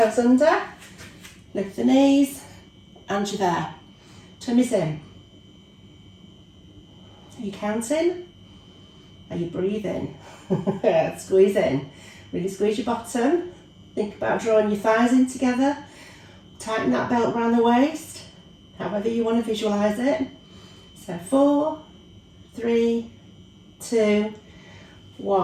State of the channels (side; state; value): both; identical; correlation 1.00